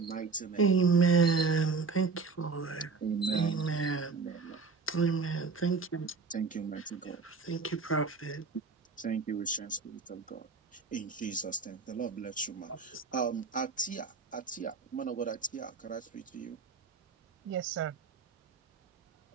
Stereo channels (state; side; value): quieter; left; 4.6 dB